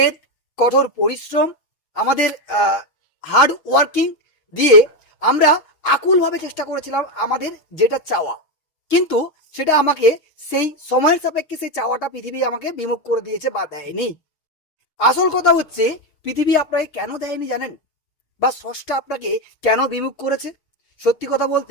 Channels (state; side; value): late; right; 6.4 ms